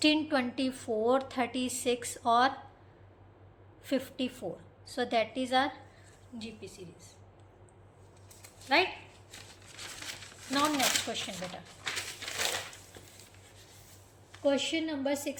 24, 36 और 54, so that is our GP series, right? Now next question बेटा, क्वेश्चन नंबर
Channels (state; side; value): identical; both; correlation 1.00